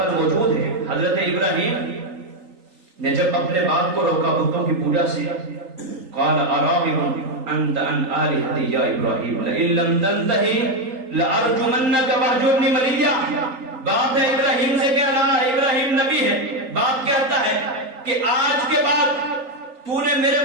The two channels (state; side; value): late; left; 3.8 ms